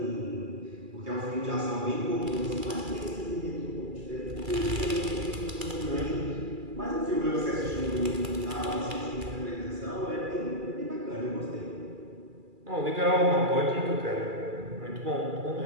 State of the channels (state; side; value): late; left; 2.3 ms